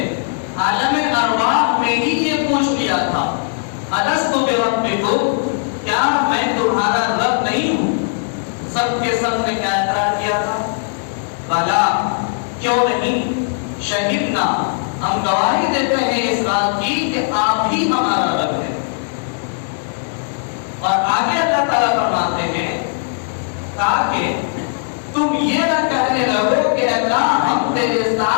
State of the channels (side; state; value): right; silent; digital silence